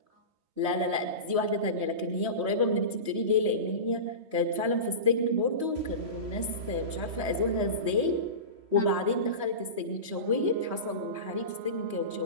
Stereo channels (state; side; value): late; left; 3.2 ms